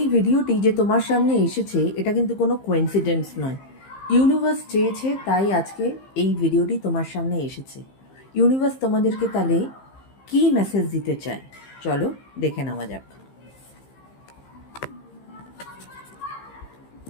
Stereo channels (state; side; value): late; right; 15 ms